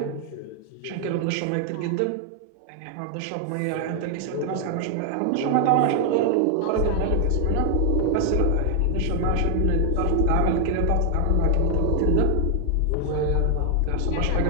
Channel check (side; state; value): both; different; correlation 0.00